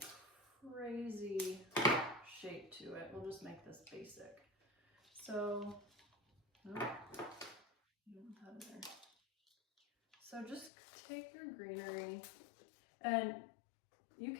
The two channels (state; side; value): drops out; right; at 10.7 s